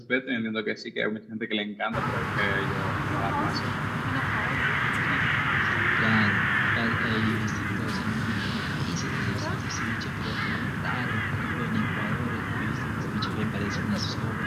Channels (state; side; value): identical; both; correlation 1.00